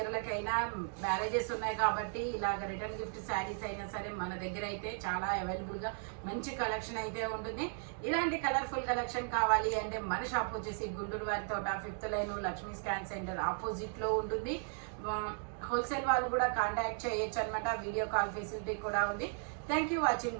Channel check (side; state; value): left; silent; 54 dB below the other